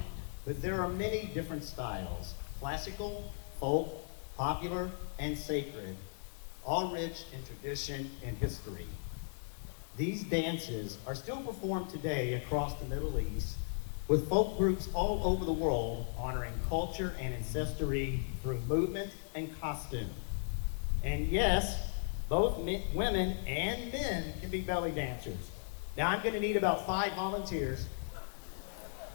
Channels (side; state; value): right; silent; digital silence